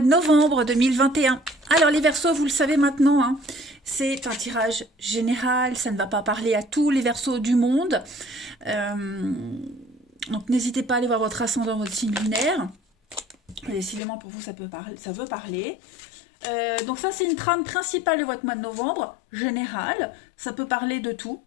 de novembre 2021. Alors les Verseaux, vous le savez maintenant, hein, c'est un tirage général, ça ne va pas parler à tous les Verseaux du monde. Donc n'hésitez pas à aller voir votre ascendant, votre signe lunaire. Décidément pour vous ça veut parler. Donc ça c'est une trame principale de votre mois de novembre, général. Ça peut parler de tout.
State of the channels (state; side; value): drops out; right; at 14.0 s